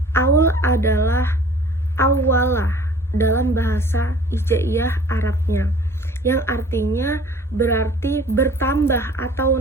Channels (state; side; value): normal; both; correlation 0.49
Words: aul adalah awalah dalam bahasa Hijaiyah Arabnya, yang artinya berarti bertambah atau